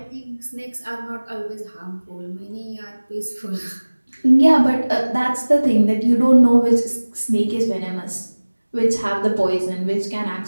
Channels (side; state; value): both; inverted; correlation -1.00